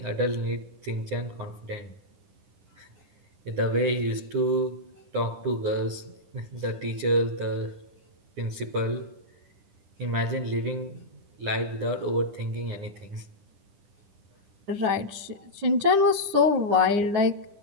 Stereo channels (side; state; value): left; late; 10 ms